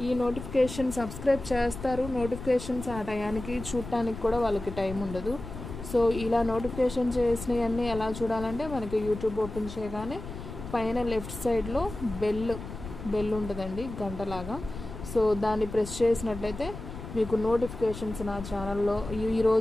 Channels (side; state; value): left; noise; rumble, 10 dB below the sound